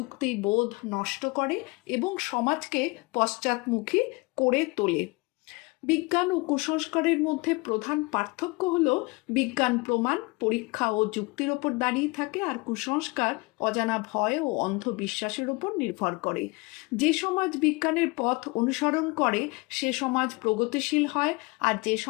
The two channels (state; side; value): quieter; right; 25.8 dB